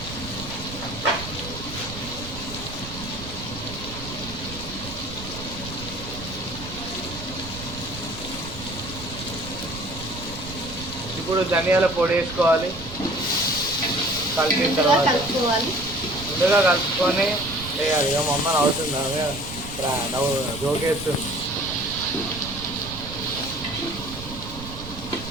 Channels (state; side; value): noise; right; rumble, 11 dB below the sound